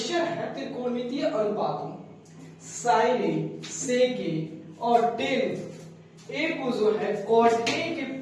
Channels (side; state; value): both; identical; correlation 1.00